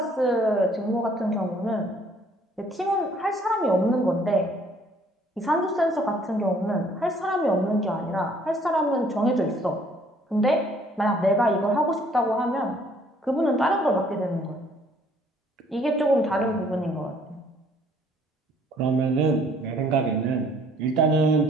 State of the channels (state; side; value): normal; both; correlation 0.61